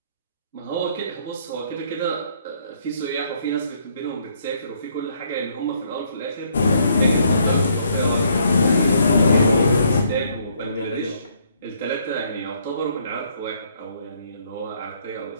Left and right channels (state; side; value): inverted; both; correlation -0.68